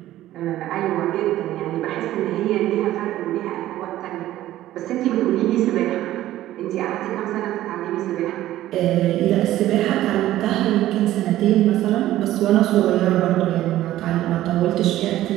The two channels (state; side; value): quieter; left; 14.3 dB